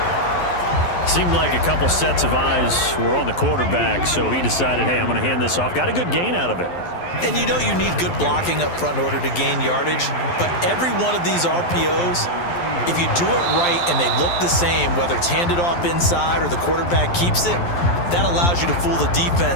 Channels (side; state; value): right; late; 12 ms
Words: Seemed like a couple sets of eyes were on the quarterback, so he decided, hey, I'm going to hand this off. Got a good gain out of it. And you know you need good blocking up front in order to gain yardage, but every one of these RPOs, if you do it right and they look the same, whether it's handed off inside or the quarterback keeps it, that allows you to fool the